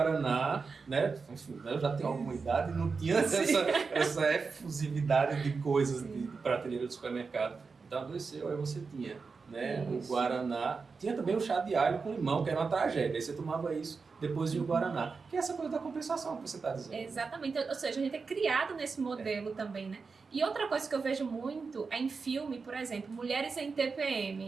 né? Enfim, eu já tenho alguma idade e não tinha essa efusividade de coisas de prateleira do supermercado. Então adoeceu, aí você tinha, né? O guaraná. Tinha também o chá de alho com limão, que era uma tragédia. Aí você tomava isso depois de o guaraná. Que é essa coisa da compensação que você está dizendo. Exatamente. Ou seja, a gente é criado nesse modelo também, né? E outra coisa que eu vejo muito é em filme, por exemplo, mulheres em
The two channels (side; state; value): left; quieter; 4.8 dB